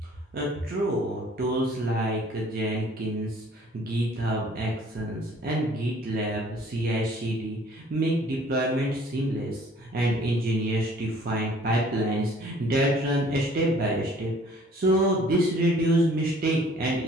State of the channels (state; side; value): normal; both; correlation 0.55